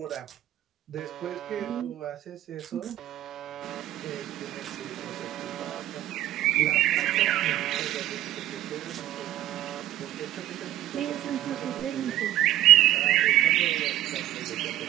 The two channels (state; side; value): quieter; left; 13.4 dB